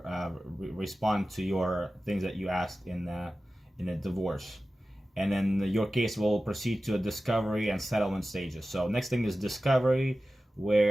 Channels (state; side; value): normal; both; correlation 0.95